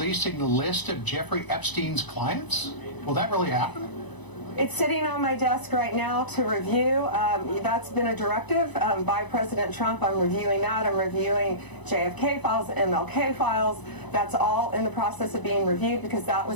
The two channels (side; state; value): right; late; 1.0 ms